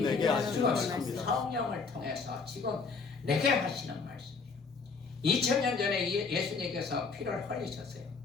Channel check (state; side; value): quieter; right; 4.7 dB